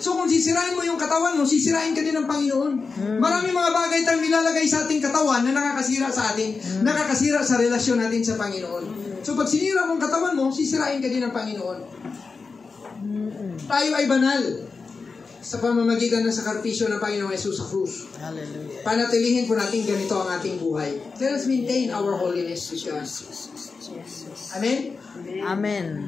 kung sisirain mo yung katawan mo, sisirain ka din ng Panginoon. Maraming mga bagay tayong nilalagay sa ating katawan na nakakasira sa atin, nakakasira sa relasyon natin sa Panginoon. So pag sinira mong katawan mo, sisirain ka din ng Panginoon. Tayo ay banal sa pamamagitan ng sakripisyo ng Panginoong Yesus sa krus. Hallelujah. Panatilihin po natin ganito ang ating buhay. Let us maintain our holiness with God. Amen? Amen.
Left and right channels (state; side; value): quieter; right; 4.6 dB